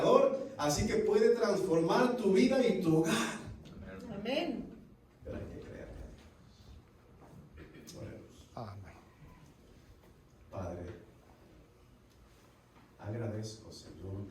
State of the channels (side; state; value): both; identical; correlation 1.00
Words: así que puede transformar tu vida y tu hogar. Amén. Pero hay que creerle. Oremos. Amén. Padre, agradezco, Señor,